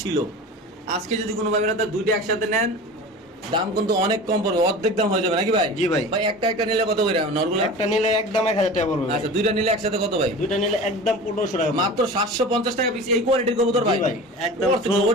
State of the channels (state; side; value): normal; both; correlation 0.35